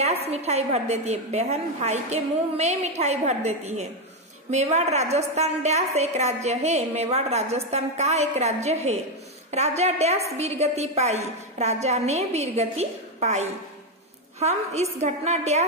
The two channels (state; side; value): normal; both; correlation 0.06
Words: मिठाई भर देती है, बहन भाई के मुंह में मिठाई भर देती है। मेवाड़ राजस्थान डैश एक राज्य है, मेवाड़ राजस्थान का एक राज्य है। राजा डैश वीरगति पाई, राजा ने वीरगति पाई। हम इस घटना